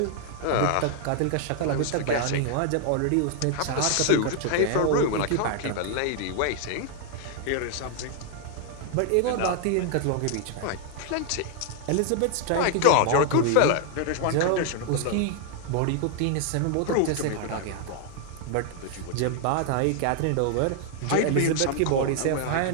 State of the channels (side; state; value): both; different; correlation 0.00